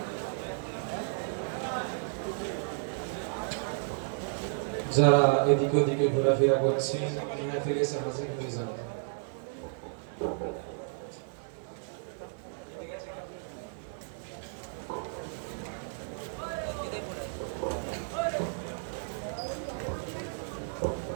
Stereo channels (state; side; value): silent; left; 56 dB below the other